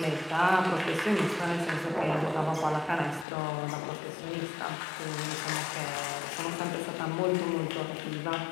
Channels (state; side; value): drops out; right; at 3.2 s